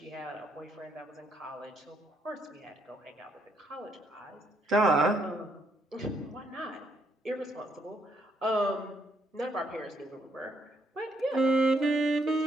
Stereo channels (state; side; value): normal; both; correlation 0.73